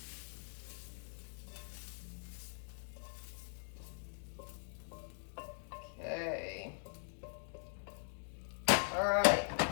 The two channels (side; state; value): right; silent; digital silence